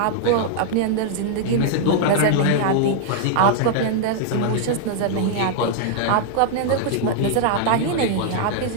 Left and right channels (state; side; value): different; both; correlation -0.01